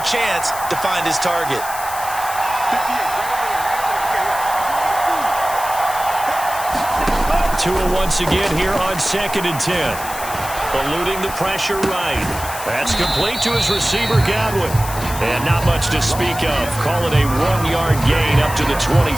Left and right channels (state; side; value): noise; left; hiss, 10 dB below the sound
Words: chance to find his target. Tua once again here on 2nd and 10. Eluding the pressure right. That's complete to his receiver, Godwin. And not much to speak of. Call it a 1-yard gain up to the